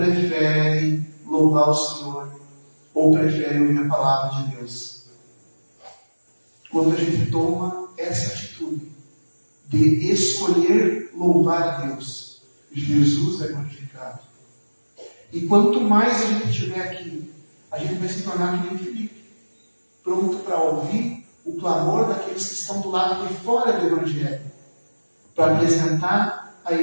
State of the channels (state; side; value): inverted; both; correlation -1.00